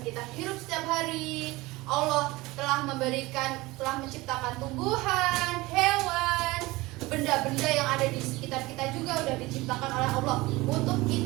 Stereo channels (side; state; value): left; quieter; 20.9 dB